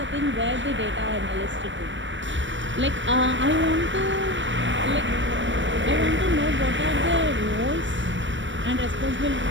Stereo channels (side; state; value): left; late; 0.54 ms